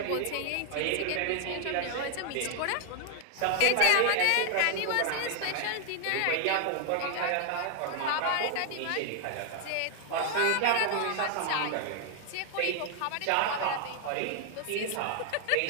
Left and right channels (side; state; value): both; different; correlation 0.00